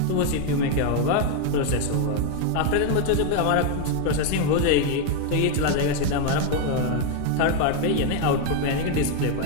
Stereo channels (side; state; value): both; different; correlation 0.01